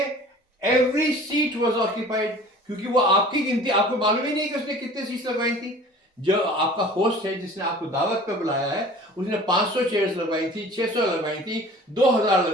एवरी सीट वाज ऑक्यूपाइड, क्योंकि वो आपकी गिनती, आपको मालूम ही नहीं कि उसने कितने सीट्स लगवाई थी. जो आपका होस्ट है, जिसने आपको दावत पे बुलाया है, उसने 500 चेयर्स लगवाई थी, 600 लगवाई थी, 2000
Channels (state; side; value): normal; both; correlation 0.45